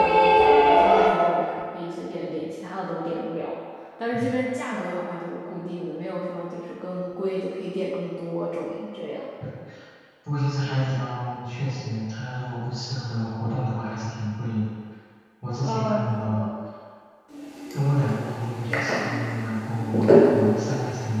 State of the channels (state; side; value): identical; both; correlation 1.00